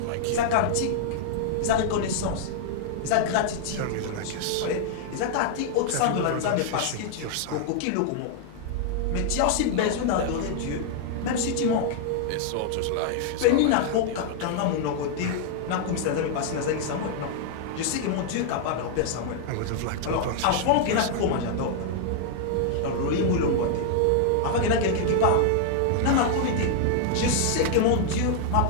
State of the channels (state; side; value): different; both; correlation 0.00